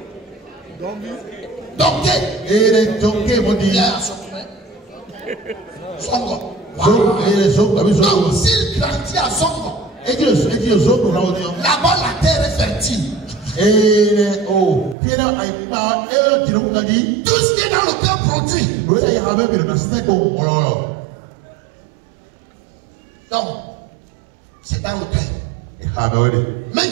Songo. Donc, s'il grandit à Songo, là-bas la terre est fertile. Tout ce qui est dans le cœur produit. Donc, c'est dans le cœur. Même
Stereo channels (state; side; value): drops out; left; at 15.0 s